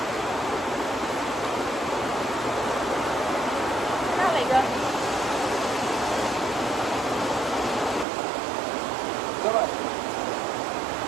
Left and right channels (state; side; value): drops out; left; at 8.1 s